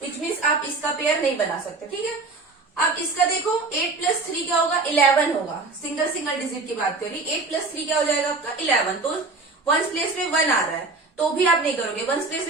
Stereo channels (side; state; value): left; quieter; 3.7 dB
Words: विच मीन्स आप इसका पेयर नहीं बना सकते. ठीक है, अब इसका देखो 8 प्लस 3 क्या होगा? 11 होगा. सिंगल डिजिट की बात करी. 8 प्लस 3 क्या हो जाएगा आपका? 11. तो वंस प्लेस में 1 आ रहा है तो भी आप नहीं करोगे. वंस प्लेस